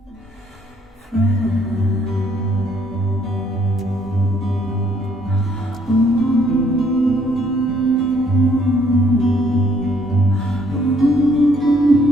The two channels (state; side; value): normal; both; correlation 0.66